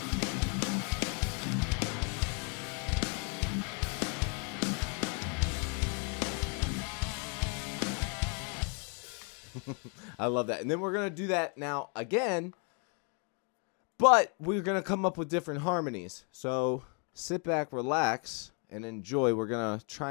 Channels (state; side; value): quieter; right; 38.3 dB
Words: I love that. And then we're going to do that now again, but we're going to come up with different harmonies. So sit back, relax, and enjoy. We're going to